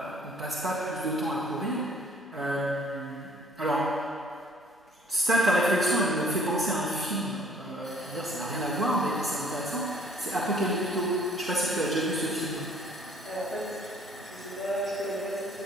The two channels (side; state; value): both; normal; correlation 0.58